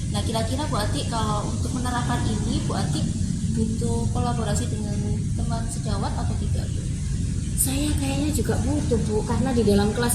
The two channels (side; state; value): both; identical; correlation 1.00